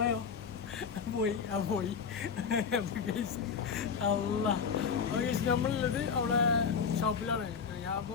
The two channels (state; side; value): quieter; right; 6.2 dB